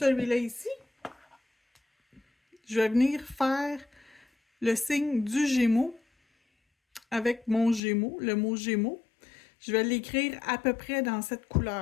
ici, je vais venir faire le signe du Gémeaux avec mon Gémeaux, le mot Gémeaux. Je vais l'écrire à peu près dans cette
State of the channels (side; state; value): right; drops out; at 7.8 s